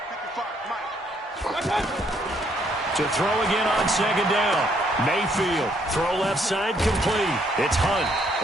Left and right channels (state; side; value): normal; both; correlation 0.69